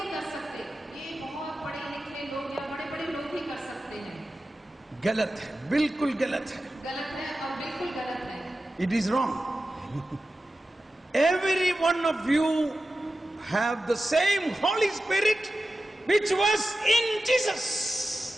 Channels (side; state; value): both; normal; correlation 0.93